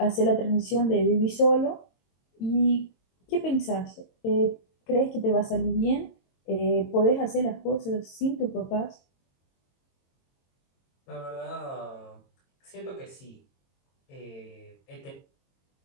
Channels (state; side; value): late; right; 22 ms